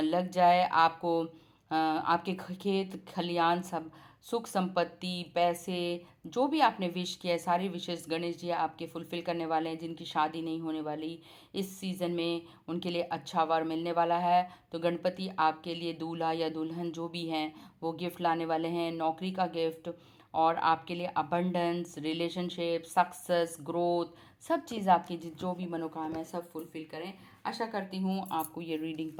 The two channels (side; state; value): both; identical; correlation 1.00